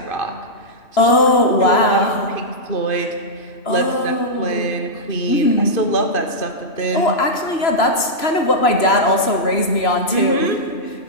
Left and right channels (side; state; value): right; late; 3.0 ms